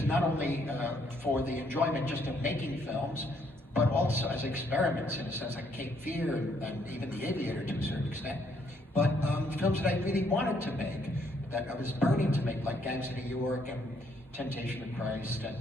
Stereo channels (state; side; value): normal; both; correlation 0.70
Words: not only for the enjoyment just of making films, but also as experiments, in a sense, like Cape Fear and even The Aviator to a certain extent, but films that I really wanted to make, that I was burning to make, like Gangs of New York and Temptation of Christ